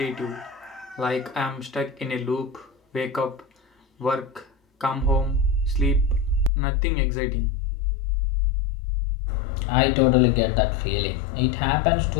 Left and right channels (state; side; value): drops out; right; at 6.5 s